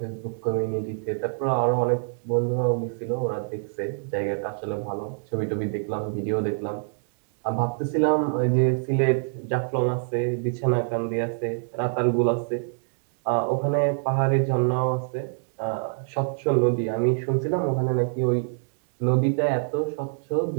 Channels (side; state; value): left; silent; digital silence